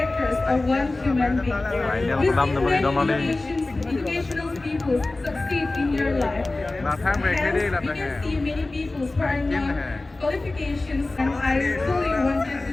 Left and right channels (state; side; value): quieter; right; 3.1 dB